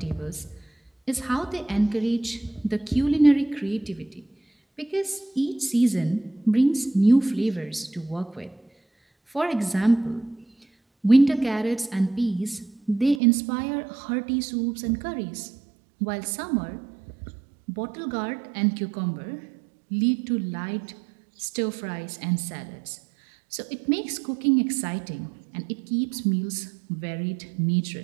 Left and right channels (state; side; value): drops out; left; at 13.2 s